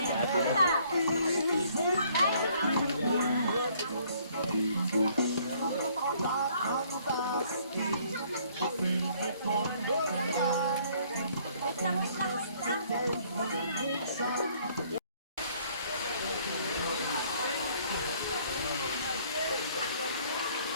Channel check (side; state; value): both; inverted; correlation -0.62